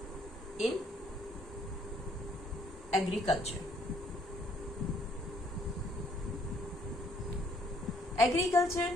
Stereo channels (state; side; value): normal; both; correlation 0.65